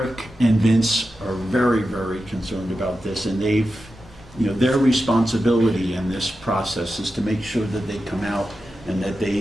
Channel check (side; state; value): both; normal; correlation 0.91